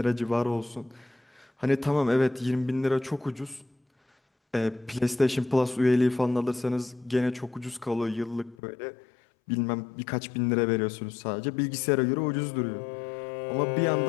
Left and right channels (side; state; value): right; drops out; at 8.6 s